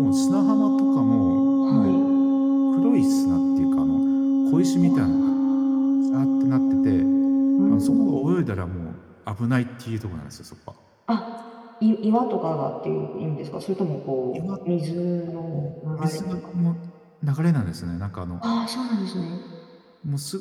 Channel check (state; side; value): identical; both; correlation 1.00